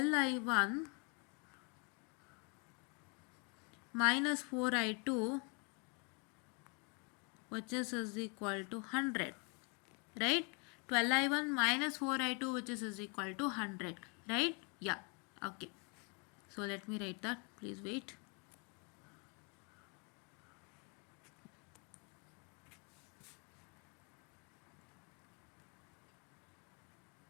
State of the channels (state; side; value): quieter; right; 34.2 dB